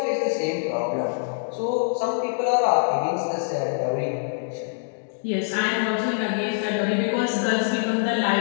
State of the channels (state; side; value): silent; right; digital silence